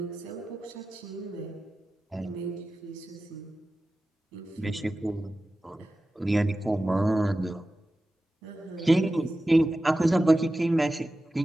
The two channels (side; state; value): both; normal; correlation 0.94